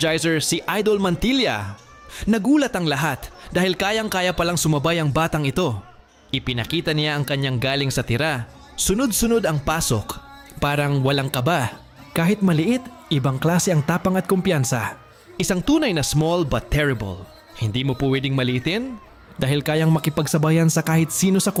si Idol Mantilla? Nagulat ang lahat dahil kayang-kaya palang sumabay ang batang ito. Ipinakita niya ang kanyang galing sa tira. Sunod-sunod ang pasok. Parang walang kaba. Kahit maliit, ibang klase ang tapang at kumpiyansa. Isang tunay na small but terrible. Hindi mo po pwedeng maliitin dahil kayang makipagsabayan sa kahit sino sa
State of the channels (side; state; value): both; identical; correlation 1.00